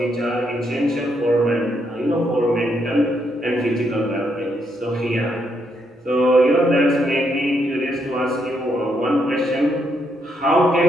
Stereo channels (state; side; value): normal; both; correlation 0.77